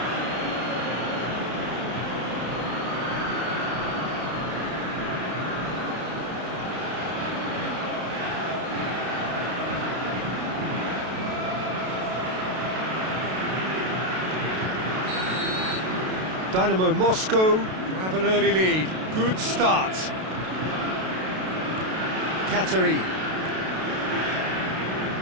Dynamo Moscow have an early lead. Good start. Katerin.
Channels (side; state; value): left; late; 32 ms